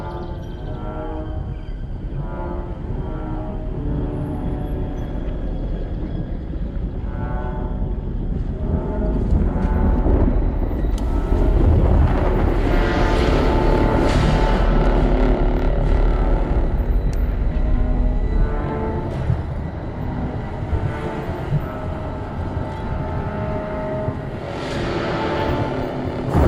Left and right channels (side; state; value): both; identical; correlation 1.00